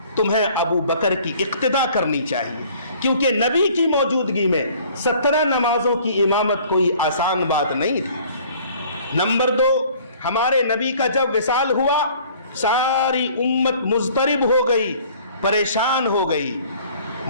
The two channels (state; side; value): inverted; both; correlation -0.53